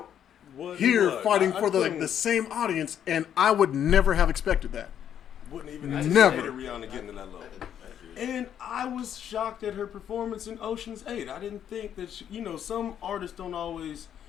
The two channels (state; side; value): quieter; right; 9.5 dB